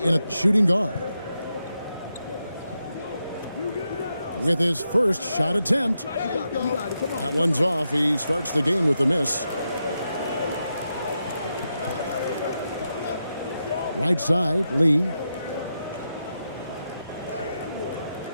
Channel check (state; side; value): inverted; both; correlation -0.86